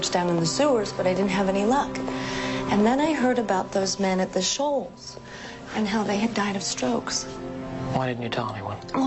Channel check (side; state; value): both; identical; correlation 1.00